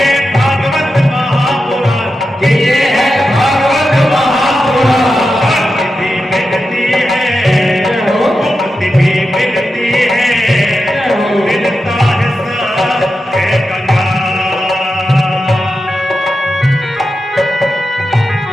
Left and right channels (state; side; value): normal; both; correlation 0.90